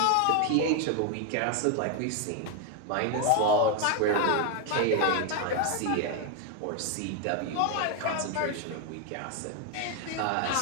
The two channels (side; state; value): both; different; correlation 0.01